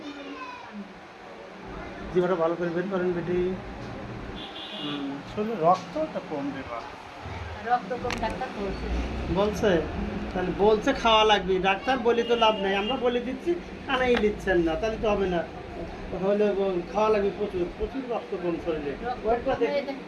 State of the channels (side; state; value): both; identical; correlation 1.00